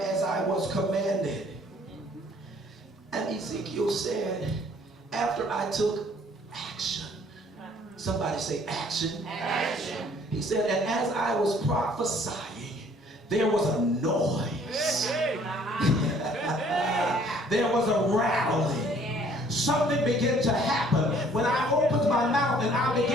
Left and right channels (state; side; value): normal; both; correlation 0.58